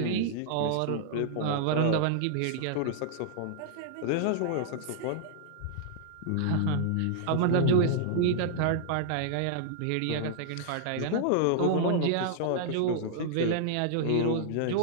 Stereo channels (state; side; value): different; both; correlation -0.01